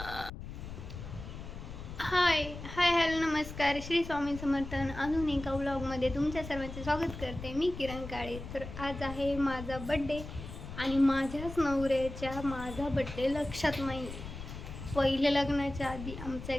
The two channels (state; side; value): noise; left; rumble, 10 dB below the sound